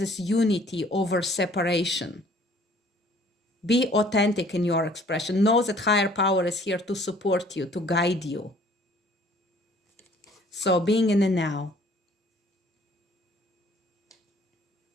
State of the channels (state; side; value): normal; both; correlation 0.56